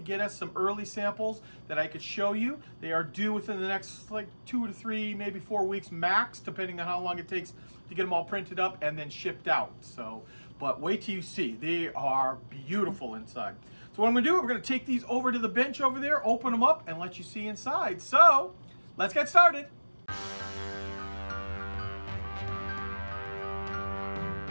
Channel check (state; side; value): inverted; both; correlation -1.00